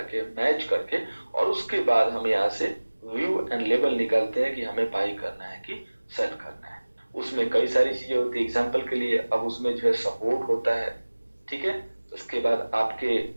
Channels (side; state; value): both; inverted; correlation -1.00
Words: मैच करके, और उसके बाद हम यहाँ से व्यू एंड लेवल निकालते हैं कि हमें बाई करना है कि सेल करना है। उसमें कई सारी चीजें होती है, एग्जांपल के लिए अब उसमें जो है सपोर्ट होता है, ठीक है, उसके बाद आपके